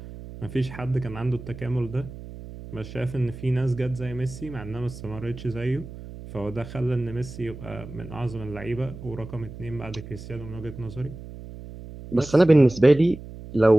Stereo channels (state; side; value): noise; right; hum, 13 dB below the sound